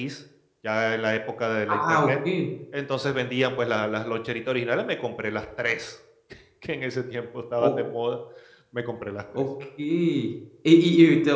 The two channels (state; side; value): identical; both; correlation 1.00